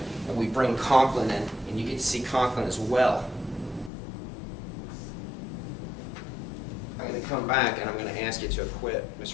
and we bring Conklin in, and you get to see Conklin as well, I'm going to come back and I'm going to ask you to acquit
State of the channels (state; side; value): drops out; right; at 3.9 s